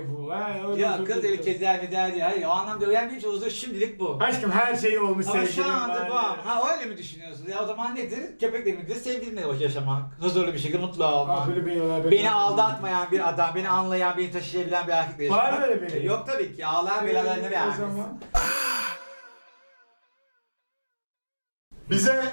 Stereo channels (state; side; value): inverted; both; correlation -1.00